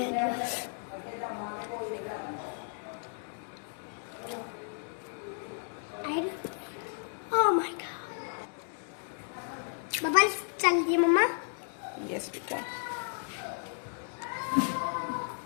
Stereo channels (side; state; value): right; silent; 56 dB below the other